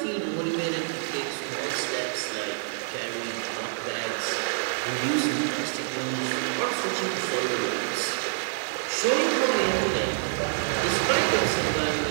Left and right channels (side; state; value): left; silent; digital silence